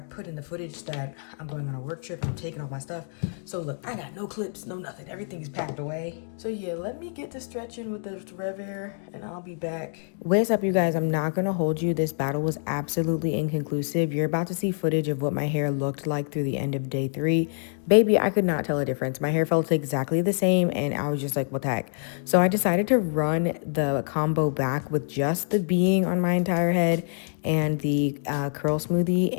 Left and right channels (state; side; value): silent; right; 61 dB below the other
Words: put in the footage that I'm going on a work trip. I'm taking all my stuff. So look, I got no clips, no nothing. Everything is packed away. So yeah, let me get to stretching with this Rev Air and I'll be back. What's up, you guys? I'm not gonna hold you. This battle was absolutely inconclusive. You're about to see footage of what my hair looked like through the end of day 3. Baby, I could not tell a difference. My hair felt exactly the same and I was just like, what the heck? So I decided to run the combo back with just the being on my entire head and the curl smoothie,